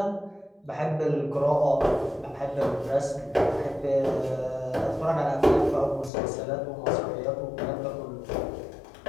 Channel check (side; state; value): right; drops out; at 6.1 s